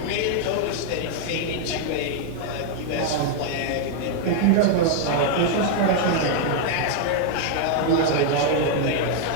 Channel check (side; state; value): both; different; correlation 0.00